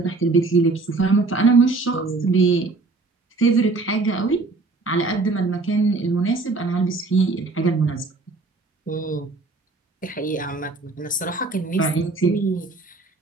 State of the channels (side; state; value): left; quieter; 3.6 dB